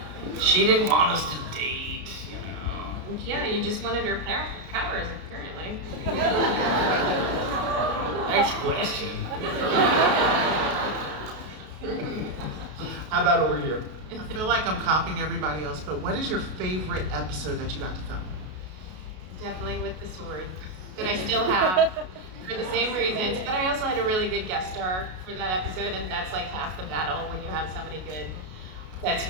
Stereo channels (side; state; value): left; late; 32 ms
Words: She didn't want us to date, you know. Yeah, you just wanted her powers, apparently. Next question. How about over here? I feel like I'm copying everybody else, but what is your favorite episode that you got to film? Definitely with the sword that I still have for the same reasons. But I also had a really good guest star for that episode, and that's like half the battle when you have somebody good that's